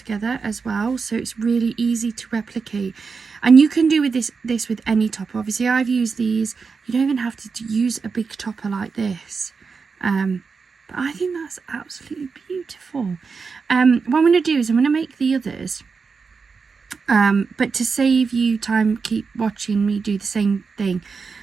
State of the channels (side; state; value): left; quieter; 5.1 dB